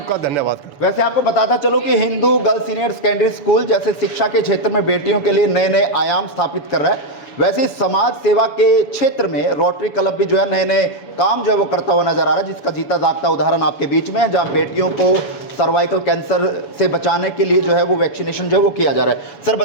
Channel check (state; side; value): late; right; 7.0 ms